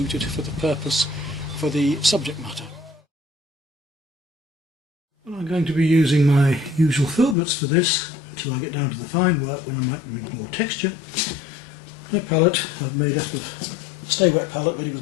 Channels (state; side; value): drops out; right; at 7.4 s